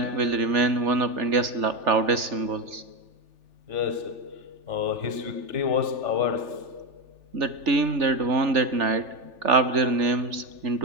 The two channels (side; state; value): left; late; 3.4 ms